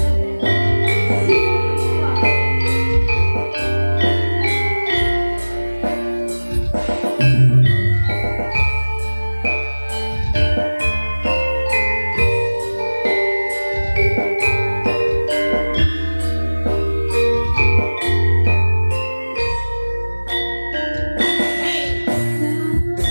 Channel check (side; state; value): both; inverted; correlation -1.00